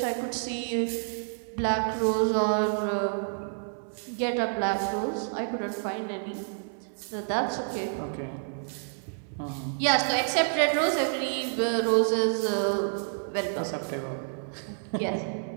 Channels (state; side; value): silent; left; 59 dB below the other